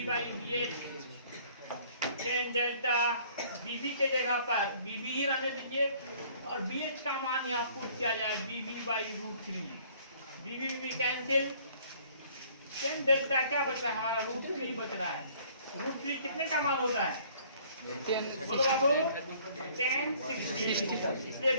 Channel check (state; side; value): inverted; both; correlation -0.57